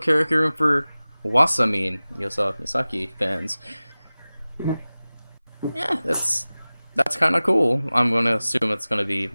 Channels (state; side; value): inverted; both; correlation -0.98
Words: room for Wasamin Yosa Misaki fans. Yeah, that's kind of cool. I'm gonna assume it's gonna be